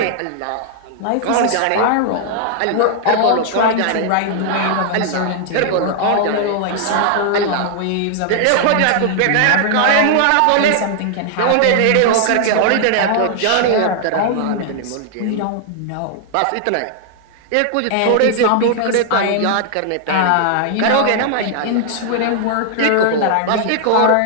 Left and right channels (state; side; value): different; both; correlation -0.01